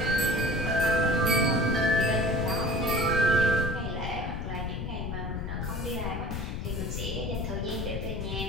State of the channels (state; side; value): noise; left; rumble, 4 dB below the sound